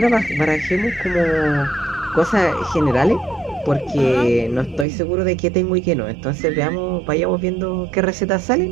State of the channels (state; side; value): drops out; left; at 4.9 s